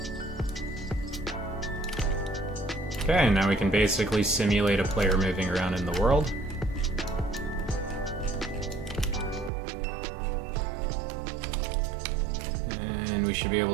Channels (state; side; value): drops out; left; at 9.5 s